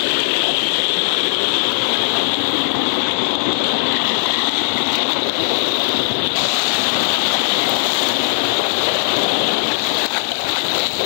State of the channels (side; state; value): right; silent; digital silence